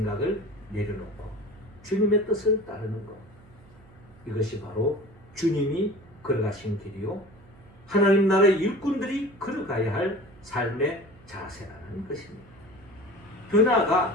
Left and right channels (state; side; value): noise; right; hum, 25 dB below the sound